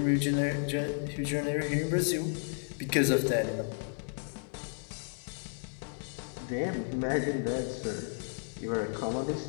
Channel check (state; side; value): silent; right; 56 dB below the other